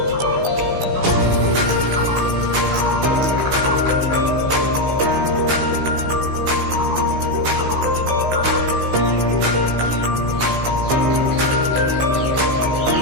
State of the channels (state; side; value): late; left; 16 ms